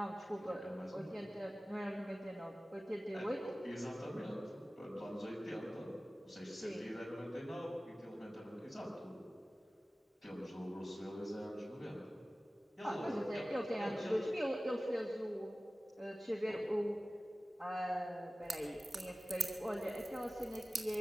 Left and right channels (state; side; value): normal; both; correlation 0.97